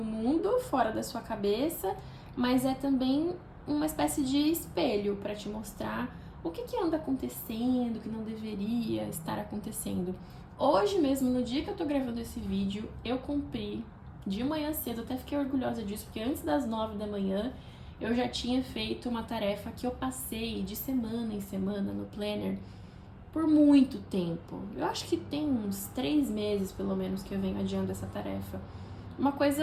mundo, fora da sua cabeça, mas é também uma espécie de espelho para te mostrar o que anda acontecendo, o que não deveria estar acontecendo. Hoje mesmo, no dia que eu tô gravando esse vídeo, eu cumpri de manhã cedo, até fiquei orgulhosa disso, porque antes das 9 da manhã eu já tinha feito uma tarefa que eu passei de semana em semana no planner por muito tempo. Eu acho que tem uns 3 meses, pelo menos, que eu venho adiando essa tarefa. Uma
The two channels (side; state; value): both; identical; correlation 1.00